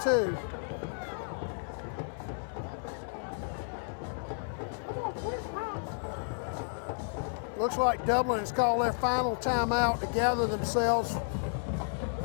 Looks like Dublin has called their final timeout to gather themselves.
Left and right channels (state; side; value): silent; right; 56 dB below the other